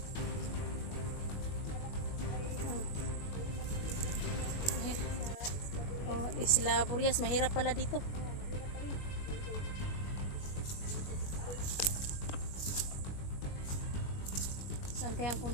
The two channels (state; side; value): late; right; 21 ms